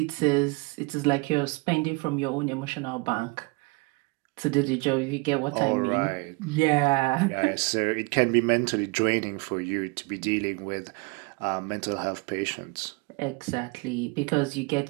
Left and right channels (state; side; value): quieter; left; 28.0 dB